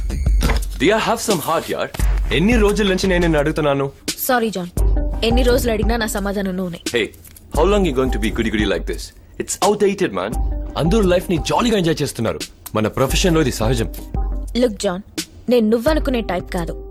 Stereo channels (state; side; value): identical; both; correlation 1.00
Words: Diya, have some heart, yaar. ఎన్ని రోజుల నుంచి నేను నిన్ను అడుగుతున్నాను. సారీ జాన్, ఎన్ని రోజులు అడిగినా నా సమాధానం నూనె. Hey, how long you going to be goody like this? It's outdated, man. అందరూ లైఫ్ ని జాలీగా ఎంజాయ్ చేస్తున్నారు. మన ప్రొఫెషన్ లో ఇది సహజం. లుక్ జాన్, నేను నువ్వనుకునే టైప్ కాదు.